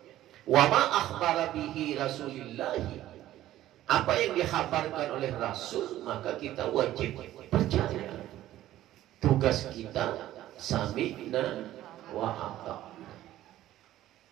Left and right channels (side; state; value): left; quieter; 13.9 dB